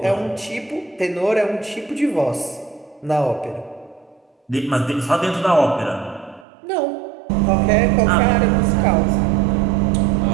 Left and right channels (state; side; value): drops out; left; at 6.5 s